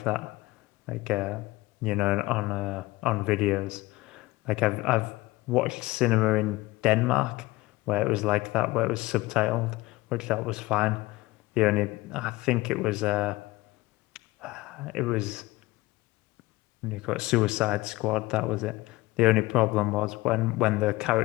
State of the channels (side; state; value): right; quieter; 20.0 dB